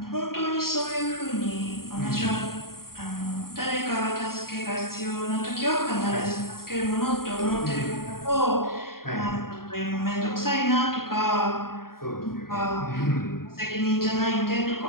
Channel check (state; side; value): late; right; 0.93 ms